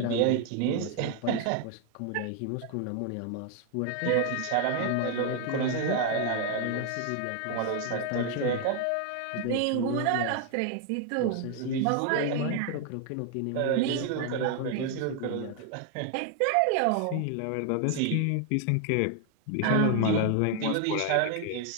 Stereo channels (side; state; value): both; different; correlation 0.00